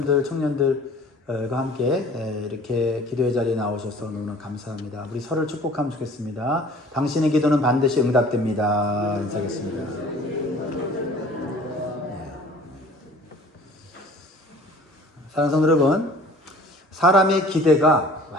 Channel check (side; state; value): both; normal; correlation 0.49